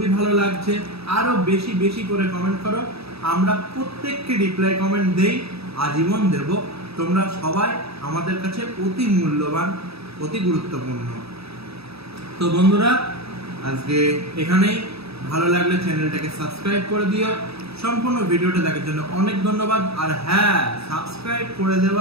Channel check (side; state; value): left; late; 0.78 ms